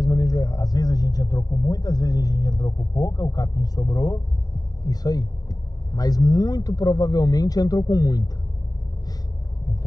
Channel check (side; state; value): right; late; 0.18 ms